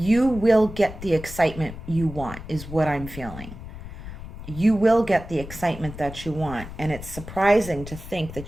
will get the excitement you want, is what I'm feeling. You will get the excitement that you want. And it's surprising to think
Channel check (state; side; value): noise; left; rumble, 12 dB below the sound